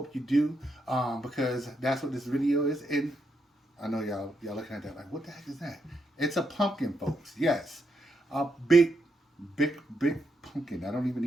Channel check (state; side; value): normal; both; correlation 0.81